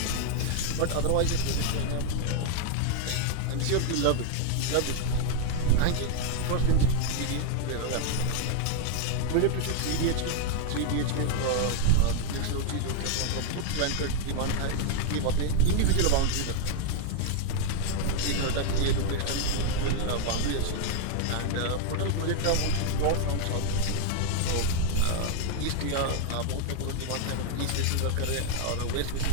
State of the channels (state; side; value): different; both; correlation 0.00